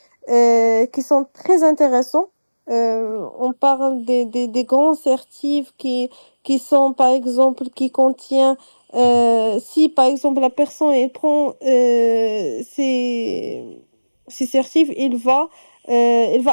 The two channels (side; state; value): both; inverted; correlation -1.00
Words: qui sont très intéressants. On parle des grands certifs qui sont, par exemple, qui contient, si par exemple la personne elle prend, ses si certif, il va